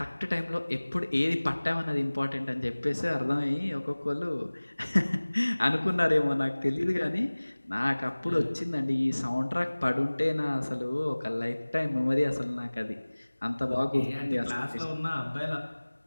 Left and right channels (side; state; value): both; inverted; correlation -1.00